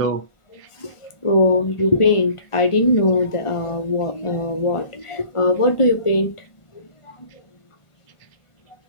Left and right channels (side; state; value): right; late; 1.4 ms